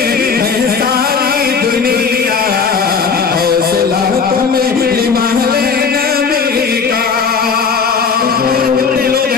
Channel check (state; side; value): quieter; right; 5.6 dB